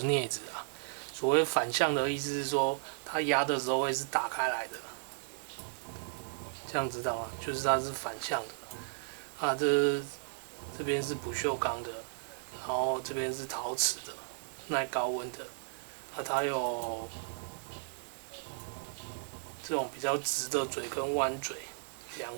镊子啊。所谓反向的意思是说，它压的时候会是打开来的，这样知道吗？就是它是反向的啊。这边是不锈钢的，然后这边是陶瓷的，耐高温的啊。它有这种比较直的嘴跟弯嘴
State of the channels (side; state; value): left; silent; digital silence